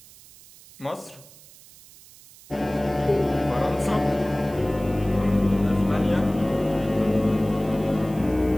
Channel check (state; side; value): noise; right; hiss, 23 dB below the sound